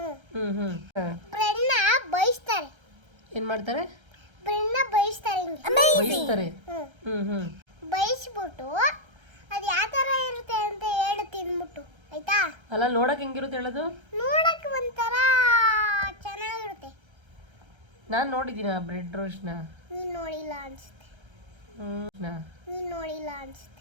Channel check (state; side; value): late; left; 1.3 ms